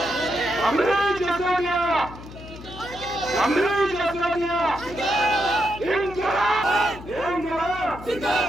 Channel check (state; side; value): noise; left; hum, 15 dB below the sound